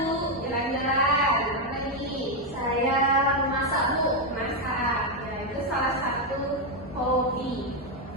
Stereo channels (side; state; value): both; normal; correlation 0.04